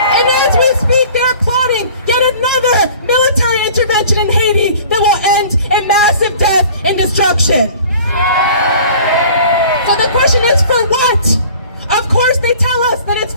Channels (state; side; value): inverted; both; correlation -0.47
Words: And as we speak, they're plotting yet another military intervention in Haiti that will end in massive death and destruction. So the question is, for what? Of course they tell us that it's